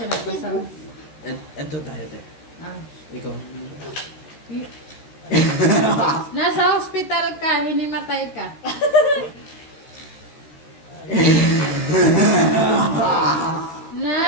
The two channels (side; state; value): right; late; 13 ms